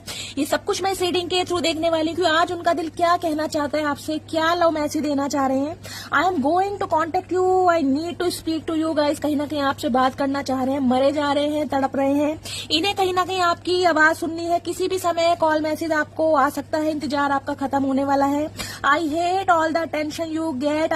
ये सब कुछ मैं इस रीडिंग के थ्रू देखने वाली हूँ। आज उनका दिल क्या कहना चाहता है आपसे, क्या लव मैसेज देना चाह रहे हैं। I am going to contact you, I need to speak to you. Guys कहीं ना कहीं आपसे बात करना चाह रहे हैं, मरे जा रहे हैं, तड़प रहे हैं। इन्हें कहीं ना कहीं आपकी आवाज सुननी है। किसी भी समय कॉल मैसेज आपको आ सकता है। इंतजार आपका खत्म होने वाला है। I hate all the attention you get.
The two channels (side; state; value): both; identical; correlation 1.00